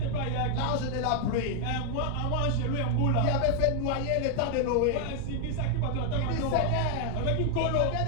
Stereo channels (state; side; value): different; both; correlation 0.00